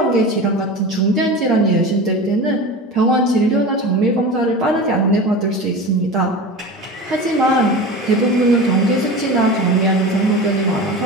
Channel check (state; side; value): normal; both; correlation 0.30